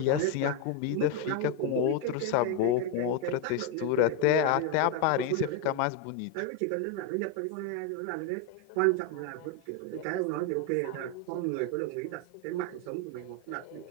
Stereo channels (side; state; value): both; different; correlation 0.02